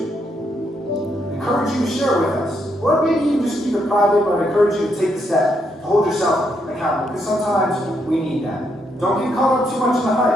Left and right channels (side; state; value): both; normal; correlation 0.77